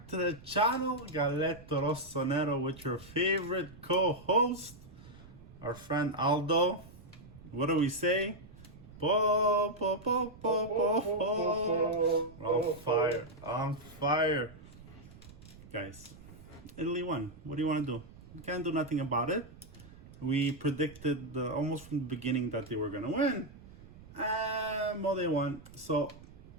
to the channel. Galletto Rossonero with your favorite co-host, our friend Aldo. What do we say? Po, po, po, po, po, po. On fire, on fire. Guys, Italy won. What do you want to do? You can't do nothing about it. We predicted almost from the beginning that they were going to win. Well, they won. So,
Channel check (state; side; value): noise; right; rumble, 19 dB below the sound